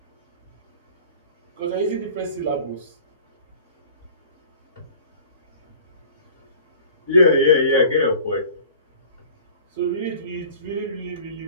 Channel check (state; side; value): inverted; both; correlation -0.45